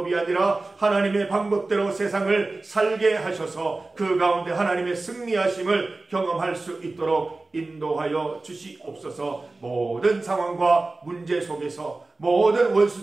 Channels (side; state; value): left; quieter; 3.3 dB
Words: 아니라 하나님의 방법대로 세상을 살게 하셔서 그 가운데 하나님의 승리하심을 경험할 수 있도록 인도하여 주시옵소서. 모든 상황과 문제 속에서 모든